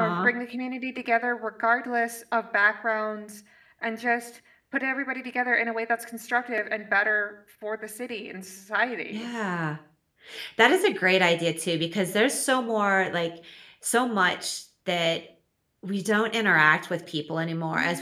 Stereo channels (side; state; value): both; identical; correlation 1.00